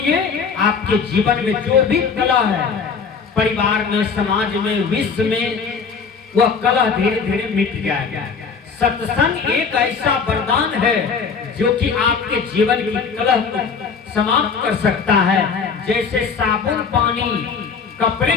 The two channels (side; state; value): right; quieter; 5.6 dB